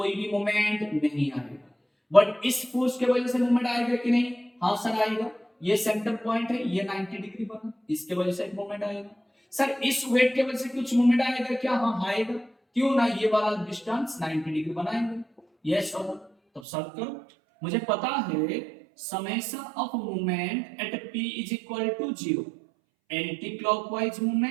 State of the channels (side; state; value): left; drops out; at 16.6 s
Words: भी मूवमेंट नहीं आएगा। बट इस फोर्स के वजह से मूवमेंट आएगा कि नहीं, हाँ सर आएगा। ये सेंटर पॉइंट है, ये 90 डिग्री बना, इसके वजह से एक मूवमेंट आएगा। सर इस वेट के वजह से कुछ मूवमेंट आएगा क्या, हाँ आएगा। क्यों ना, ये वाला डिस्टेंस 90 डिग्री बनाएंगे, यस सर। तब सॉल्व करो, मुझे पता है summation of movement at p is equal to 0, anti clockwise